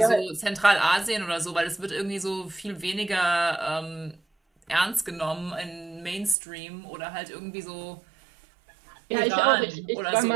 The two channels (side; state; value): left; drops out; at 6.4 s